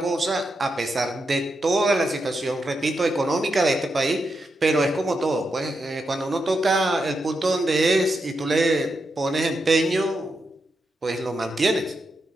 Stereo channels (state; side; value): normal; both; correlation 0.85